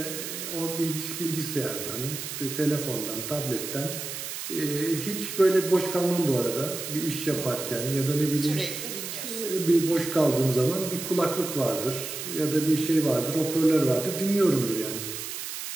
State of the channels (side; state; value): right; noise; hiss, 7 dB below the sound